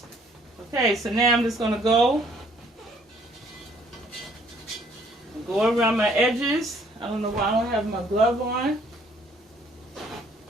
Okay, so now I'm just gonna go around my edges. I don't know why I don't have my glove on.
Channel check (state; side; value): normal; both; correlation 0.62